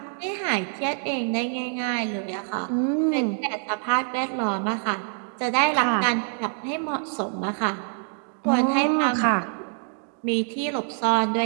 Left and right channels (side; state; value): left; silent; 61 dB below the other